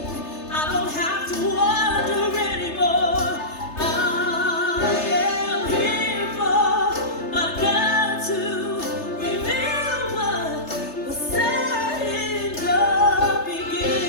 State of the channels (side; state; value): right; late; 3.3 ms